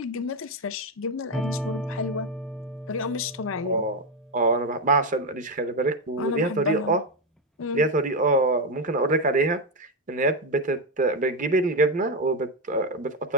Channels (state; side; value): normal; both; correlation 0.09